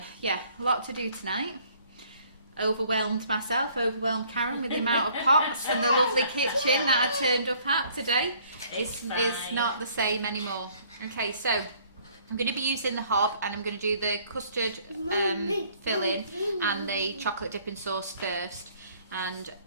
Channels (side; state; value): both; inverted; correlation -0.60